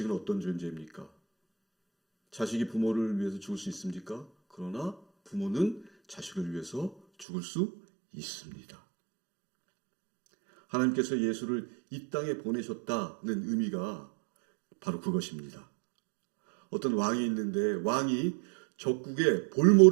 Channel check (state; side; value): drops out; left; at 7.2 s